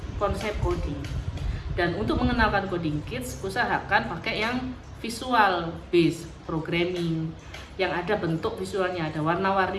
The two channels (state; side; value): identical; both; correlation 1.00